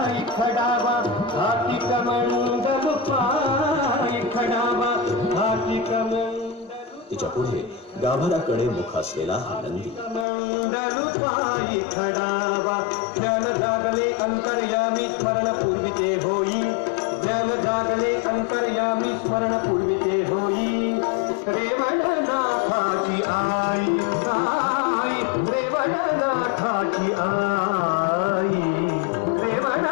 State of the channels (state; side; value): drops out; right; at 10.2 s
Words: खडावा, हाती कमंडल पाय खडावा, हाती कमंडल. तिच्या पुढे गाभाराकडे मुख असलेला हा नंदी. कमंडल पाय खडावा, ज्ञान जागले अंतर्यामी स्मरण पूर्विते होई, ज्ञान जागले अंतर्यामी स्मरण पूर्विते होई. रेवणनाथाची आई, आई रेवणनाथाची आई,